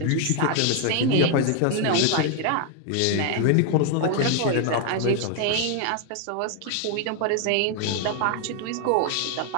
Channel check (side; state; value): both; different; correlation 0.00